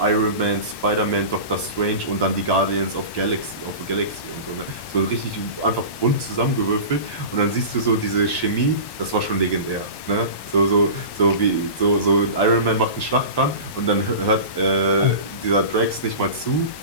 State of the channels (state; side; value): late; right; 1.1 ms